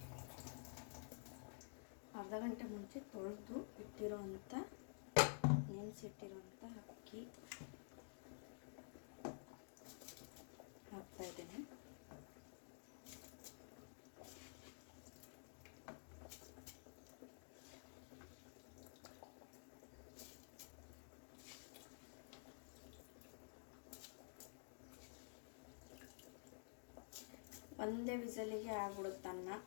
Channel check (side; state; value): right; silent; digital silence